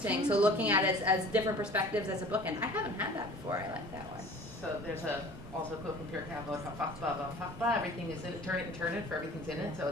So looking at it as different perspectives as a bookend. I haven't had that before. I like that one. So there's also a quote from Pirkei Avot, "Hafachba, everything is in it, turn it and turn it, for everything's in it." So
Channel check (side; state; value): both; normal; correlation 0.45